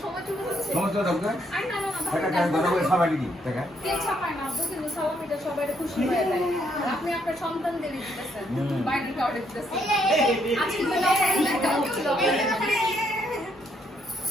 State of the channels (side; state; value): both; normal; correlation 0.72